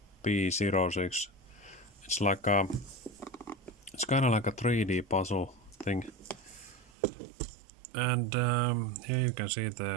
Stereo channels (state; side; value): drops out; left; at 6.9 s